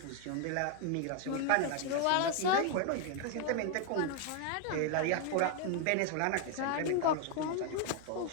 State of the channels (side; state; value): both; different; correlation 0.00